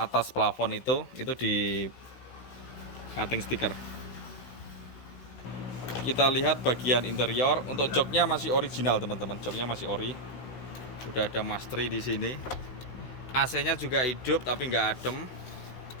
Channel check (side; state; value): right; late; 16 ms